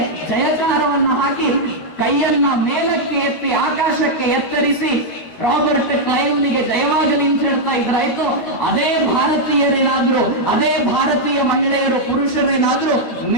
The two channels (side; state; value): right; late; 12 ms